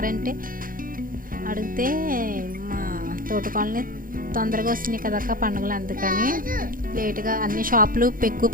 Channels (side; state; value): left; late; 0.41 ms